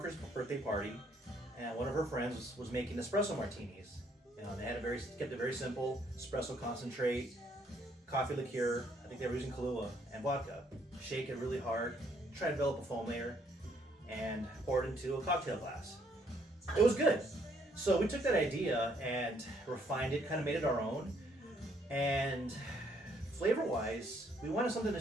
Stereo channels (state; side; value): normal; both; correlation 0.68